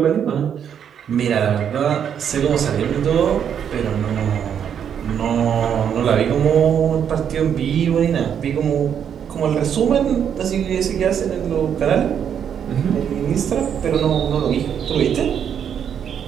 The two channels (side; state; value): left; quieter; 8.4 dB